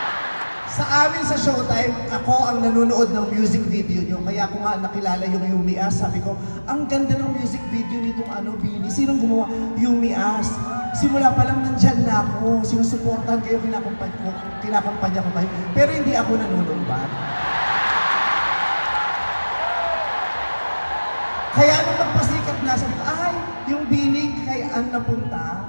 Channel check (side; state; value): both; inverted; correlation -1.00